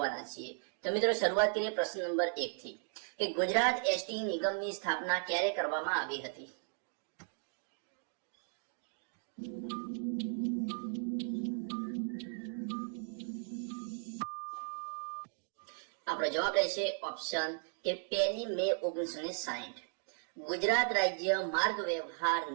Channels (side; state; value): left; silent; 53 dB below the other